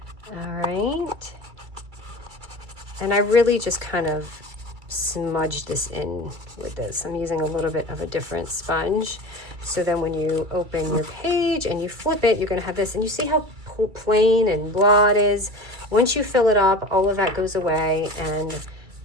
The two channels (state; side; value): late; left; 2.3 ms